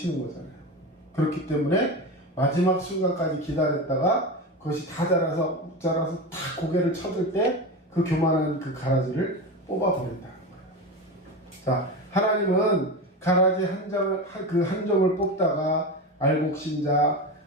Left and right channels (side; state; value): both; normal; correlation 0.23